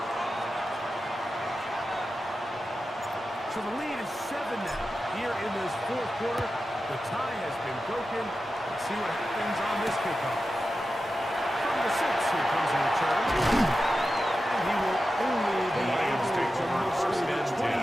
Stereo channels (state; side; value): normal; both; correlation 0.92